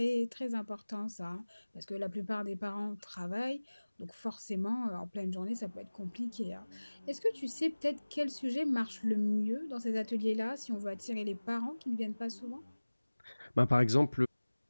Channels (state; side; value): inverted; both; correlation -1.00